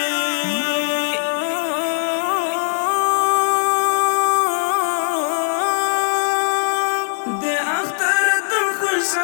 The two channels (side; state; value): right; silent; digital silence